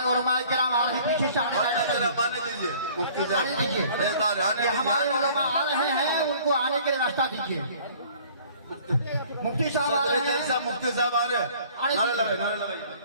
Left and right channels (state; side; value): inverted; both; correlation -0.53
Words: उलमाए किराम आ रहे हैं, पीछे से आने आने दीजिए, मुफ्ती साहब आने दीजिए। ये हमारे उलमा आ रहे हैं, उनको आने के लिए रास्ता दीजिए। मुफ्ती साहब आ रहे हैं, मुफ्ती साहब आ रहे हैं, नारे लगाइए, नारे लगाइए।